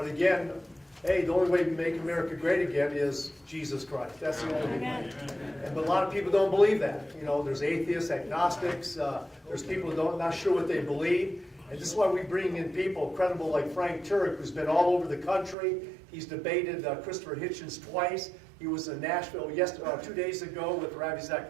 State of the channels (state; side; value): drops out; left; at 15.6 s